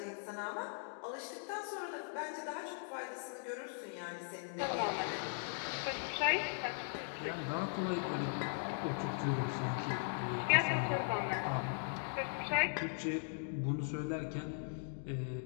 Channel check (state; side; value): silent; right; digital silence